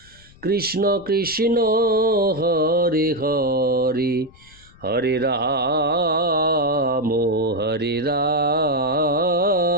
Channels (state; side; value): noise; left; rumble, 25 dB below the sound